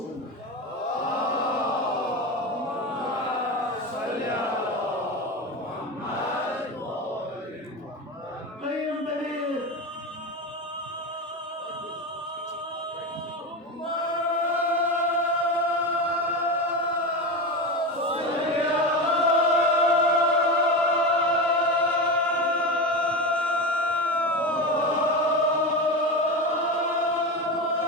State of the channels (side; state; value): both; normal; correlation 0.21